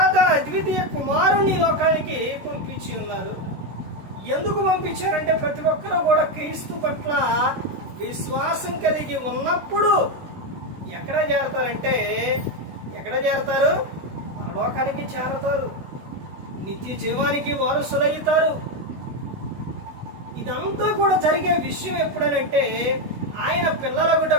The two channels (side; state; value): left; late; 16 ms